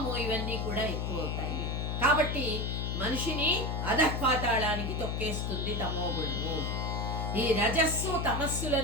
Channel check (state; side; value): noise; left; hum, 1 dB below the sound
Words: ఇవన్నీ కూడా ఎక్కువ అవుతాయి. కాబట్టి మనిషిని అధఃపాతాళానికి తొక్కేస్తుంది తమో గుణము. ఈ రజస్సు